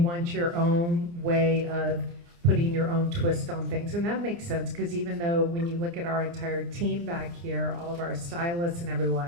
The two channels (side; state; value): left; late; 29 ms